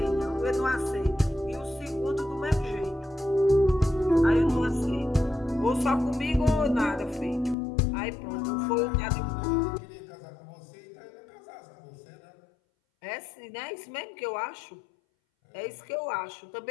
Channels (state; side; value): drops out; right; at 7.6 s